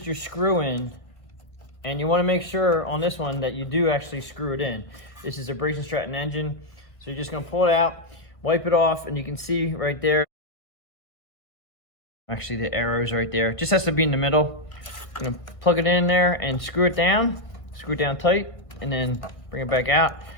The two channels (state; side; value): late; right; 1.5 ms